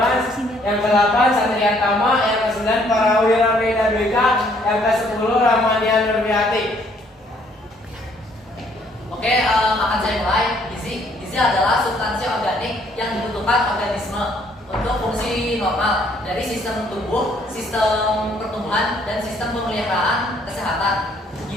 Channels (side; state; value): both; normal; correlation 0.64